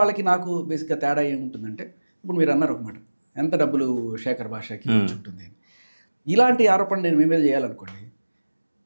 నాకు బేసిక్గా తేడా ఏముంటుందంటే, ఇప్పుడు మీరు అన్నారు ఒక మాట, ఎంత డబ్బులు శేఖర్ భాషకి వచ్చి ఉంటుంది అని. ఇలాంటి ఆరోపణ నేను మీ మీద చేయాలనుకోండి,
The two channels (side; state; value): both; inverted; correlation -1.00